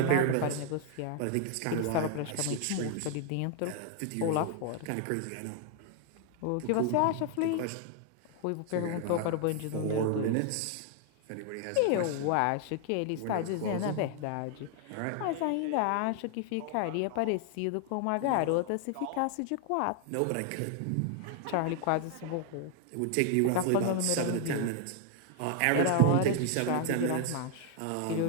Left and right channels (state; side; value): different; both; correlation 0.00